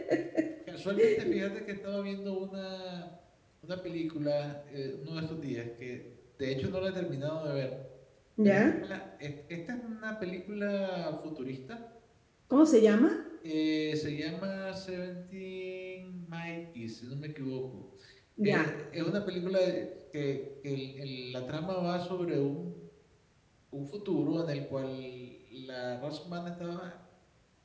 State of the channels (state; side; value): identical; both; correlation 1.00